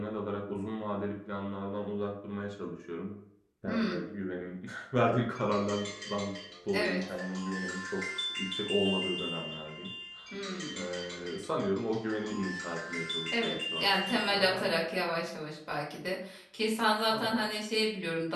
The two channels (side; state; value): both; identical; correlation 1.00